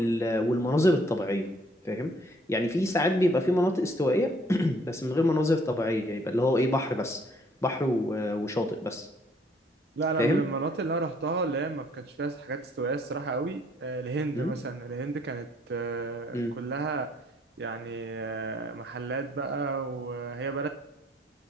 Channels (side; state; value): both; normal; correlation 0.63